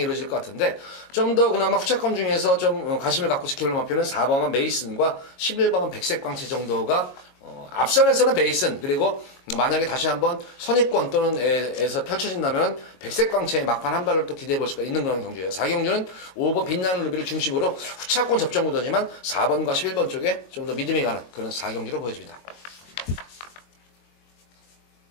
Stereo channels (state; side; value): late; right; 22 ms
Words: 것 같은데 좀 더 그나마 후차권 중에서 좀 관심을 갖고 지켜볼 마표는 4번만 메이슨과 11번만 백색광채 정도가 앞선에서는 베이슨 그리고 만약에 다시 한번 선입권 또는 에서 펼쳐진다면 백색광채의 막판 한 발을 또 기대해 볼 수가 있는 그런 경주예요. 4경주는 5번 빛나는 루비를 중심으로 후차권 접전 구도지만 4번과 11번 쪽에 좀 더 믿음이 가는 그런 4경주로 보여집니다.